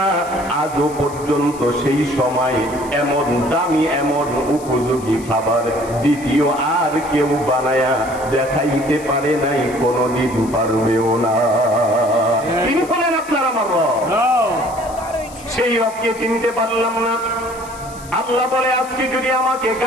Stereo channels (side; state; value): left; noise; hiss, 19 dB below the sound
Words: আজও পর্যন্ত সেই সময় এমন দামি এমন উপযোগী খাবার দ্বিতীয় আর কেউ বানায়া দেখাইতে পারে নাই, কোনদিন পারবেও না। তিনি বলেন, আপনার আমার রব। সেই রবকে চিনতে পারলাম না। আল্লাহ বলে, আজকে যদি আমাকে